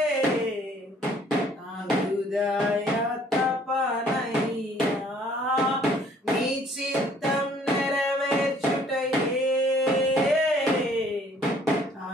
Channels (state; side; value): normal; both; correlation 0.59